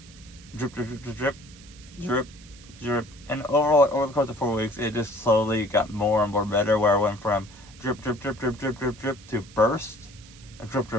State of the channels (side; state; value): right; noise; hiss, 22 dB below the sound